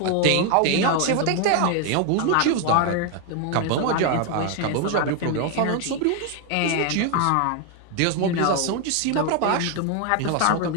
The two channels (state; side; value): different; both; correlation 0.01